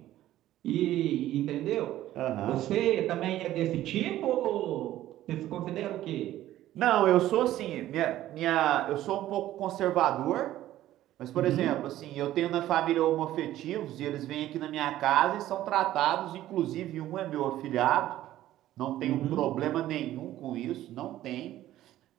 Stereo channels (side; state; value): left; quieter; 13.9 dB